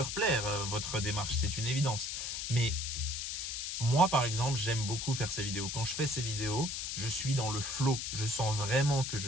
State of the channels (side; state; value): left; noise; hiss, 3 dB below the sound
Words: plaire, votre démarche, c'est une évidence. Mais moi, par exemple, j'aime beaucoup faire ces vidéos. Quand je fais ces vidéos, je suis dans le flow. Je sens vraiment que